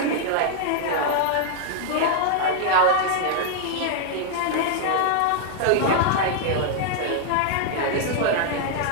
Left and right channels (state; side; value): different; both; correlation 0.00